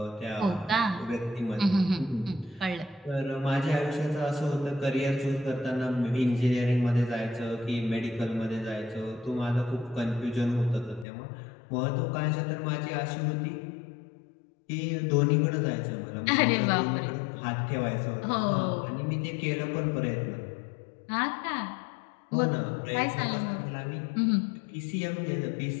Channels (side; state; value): right; drops out; at 11.1 s